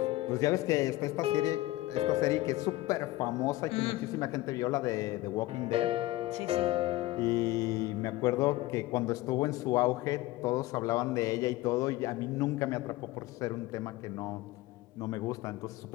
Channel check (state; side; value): quieter; right; 17.8 dB